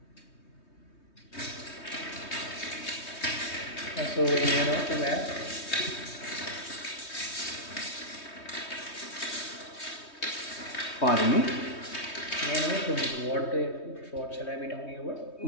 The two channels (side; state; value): right; late; 3.2 ms